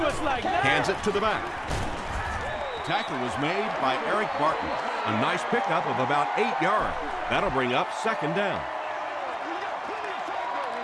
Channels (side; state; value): both; identical; correlation 1.00